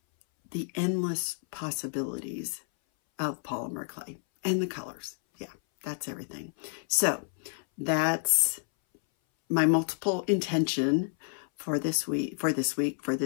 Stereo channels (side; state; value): right; silent; 58 dB below the other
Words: the endless possibilities of polymer clay and the colors. Yeah, that's everything. So that's my multiple intention for this week, for